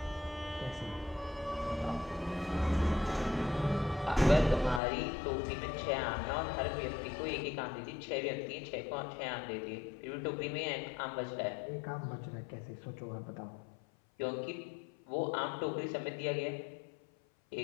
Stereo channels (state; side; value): drops out; right; at 4.8 s